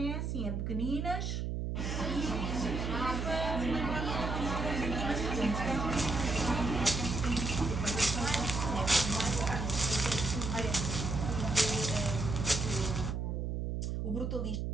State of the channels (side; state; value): right; noise; hum, 2 dB below the sound